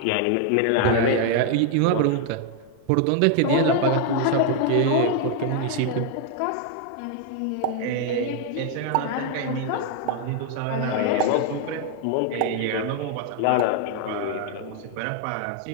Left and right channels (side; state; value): both; different; correlation 0.00